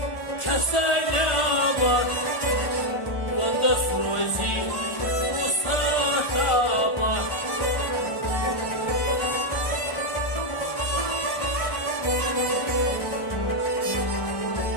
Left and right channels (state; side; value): late; right; 1.4 ms